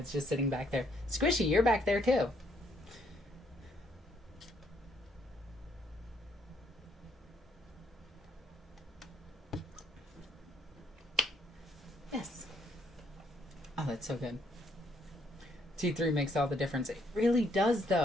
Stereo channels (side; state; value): both; normal; correlation 0.70